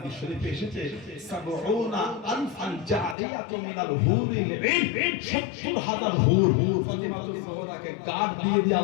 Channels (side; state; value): right; drops out; at 3.2 s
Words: শরীফে এসেছে সাবউনা আনফান জারিয়াতু মিনাল হুরিল ঈন ৭০,০০০ হুর ফাতিমাতুজ জোহরাকে গার্ড দিয়ে